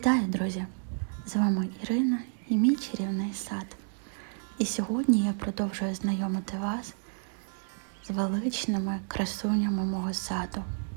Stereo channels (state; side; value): silent; left; 57 dB below the other